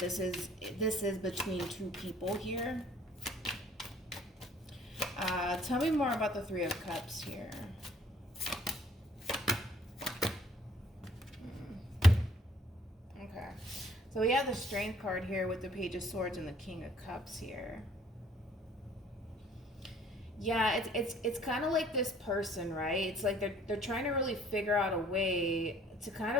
is between two people here. Tell me more about the Three of Cups here. Okay. So we have the Strength card here with the Page of Swords and the King of Cups here. Yeah, it's kind of like this person, right? It's like they're trying to really figure out a way to kind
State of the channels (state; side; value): normal; both; correlation 0.58